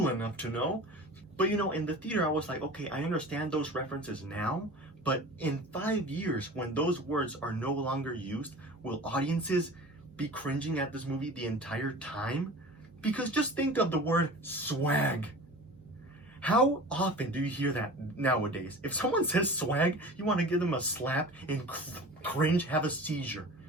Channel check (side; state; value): right; noise; hum, 28 dB below the sound